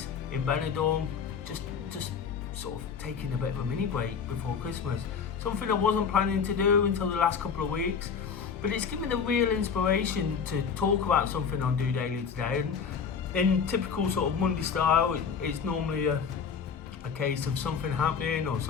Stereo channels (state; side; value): quieter; right; 6.3 dB